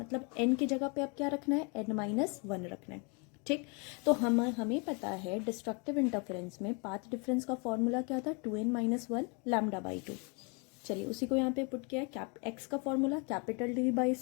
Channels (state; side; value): quieter; right; 33.6 dB